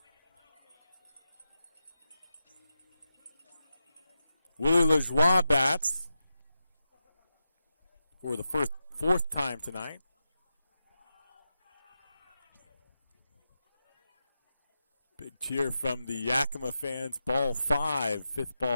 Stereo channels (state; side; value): inverted; both; correlation -0.90